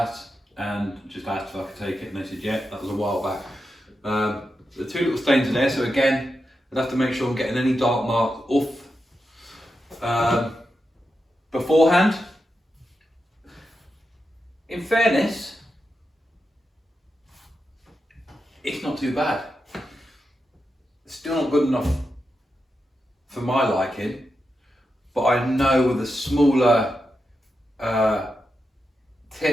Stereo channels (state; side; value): normal; both; correlation 0.88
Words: and just asked if I could take it, and they said yeah. That was a while back. The two little stains are there, so again, I'd have to make sure I'm getting any dark marks off beforehand. In fairness, it's not too bad. It's still not good enough for my liking, but I know with a smaller